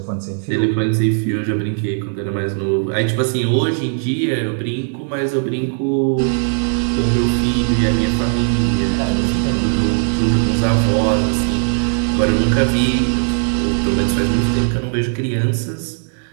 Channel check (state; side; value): silent; left; digital silence